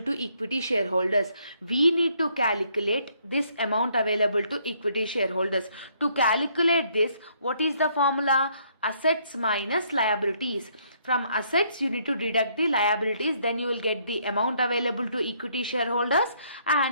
equity shareholders. We need to calculate this amount available to equity shareholders. To calculate this, what is the formula? Assets minus liabilities. From assets, you need to deduct the liabilities, then you will get the amount available to equity shareholders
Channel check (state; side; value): inverted; both; correlation -0.68